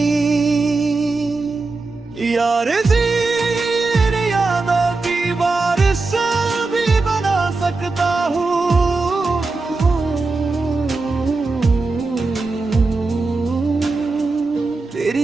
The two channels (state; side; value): quieter; left; 3.7 dB